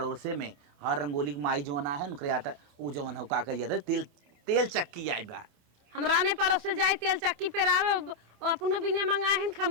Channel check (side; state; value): left; late; 27 ms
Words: में हाँ रंगोली की माई जोना है उनके आटा वो जोन हो का कहिए तेल तेल चक्की आई बा हमरा ने पड़ोस से जाए तेल चक्की पेरावे अपनो बिने मंगाए हैं